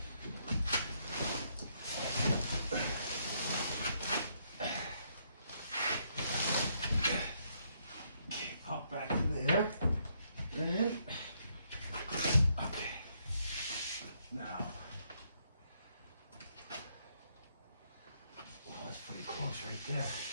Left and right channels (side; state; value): both; inverted; correlation -0.74